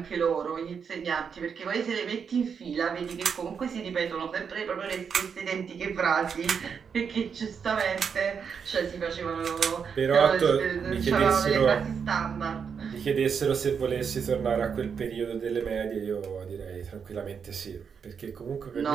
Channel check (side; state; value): left; quieter; 6.6 dB